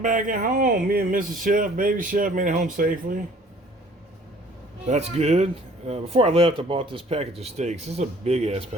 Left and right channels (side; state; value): both; normal; correlation 0.54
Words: back at home. Me and Mrs. Chef, baby chef, made it home safely. That's good. Before I left, I bought this package of steaks. This is a big ass